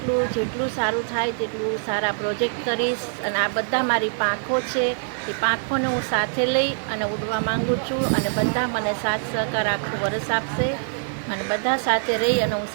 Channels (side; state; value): left; silent; digital silence